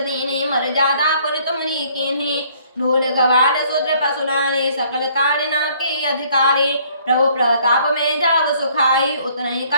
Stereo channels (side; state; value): both; inverted; correlation -0.61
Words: मर जादा पर तुमरी कीन्ही ढोल गवार सूत्र पसुनाने सकल कारिना के अधिकारी प्रभु प्रताप में जाव सुखाई उतने